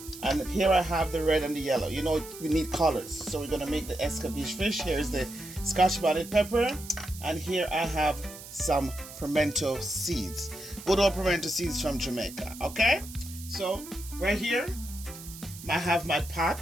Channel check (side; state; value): right; noise; hiss, 14 dB below the sound